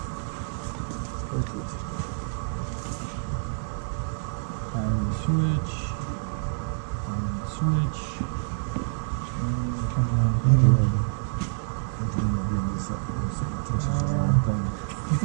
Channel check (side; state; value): left; silent; digital silence